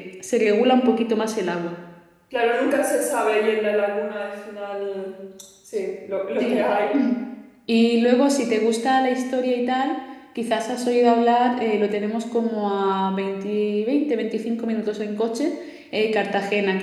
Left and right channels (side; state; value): both; identical; correlation 1.00